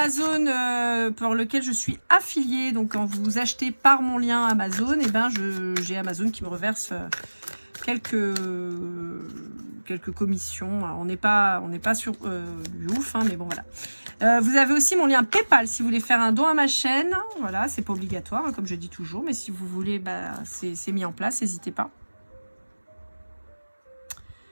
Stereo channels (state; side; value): inverted; both; correlation -1.00